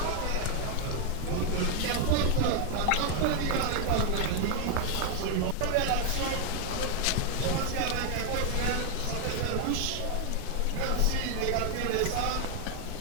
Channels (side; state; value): both; different; correlation 0.00